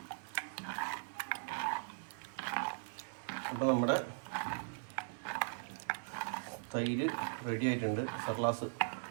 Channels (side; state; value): left; silent; 52 dB below the other